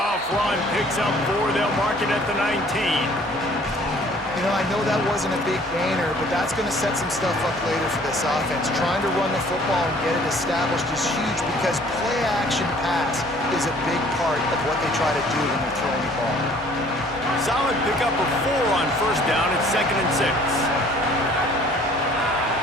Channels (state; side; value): normal; both; correlation 0.55